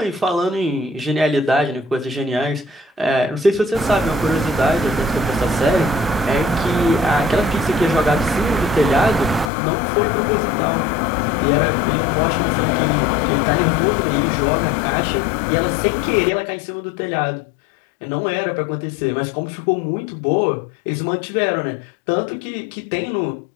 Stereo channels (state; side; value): drops out; right; at 9.5 s